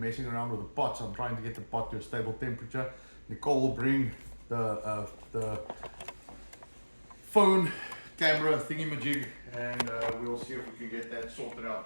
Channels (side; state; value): both; inverted; correlation -1.00